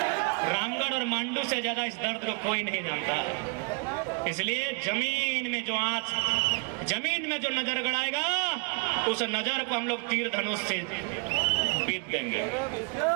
रामगढ़ और मांडू से ज्यादा इस दर्द को कोई नहीं जानता। इसलिए जमीन में जो आंच, जमीन में जो नजर गड़ाएगा, उस नजर को हम लोग तीर धनुष से पीट देंगे।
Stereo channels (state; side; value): quieter; left; 34.9 dB